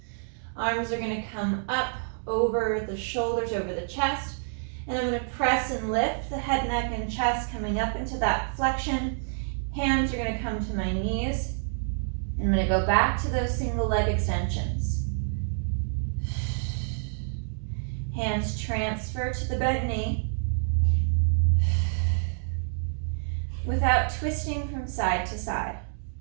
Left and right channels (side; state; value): left; silent; digital silence